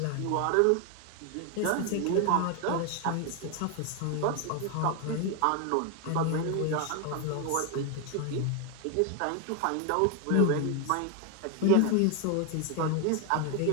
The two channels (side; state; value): both; different; correlation 0.01